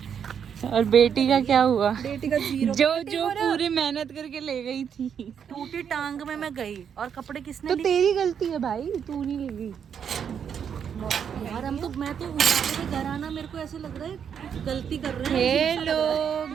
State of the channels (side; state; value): left; quieter; 7.8 dB